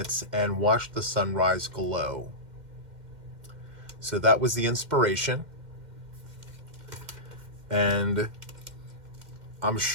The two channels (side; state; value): left; late; 2.1 ms